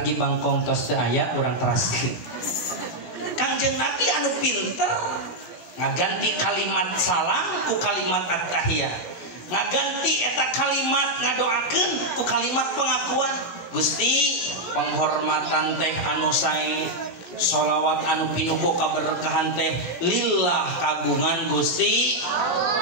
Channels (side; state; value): right; late; 16 ms